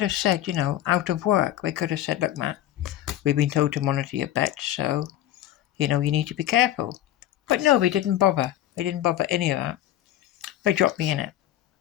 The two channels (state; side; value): quieter; right; 12.7 dB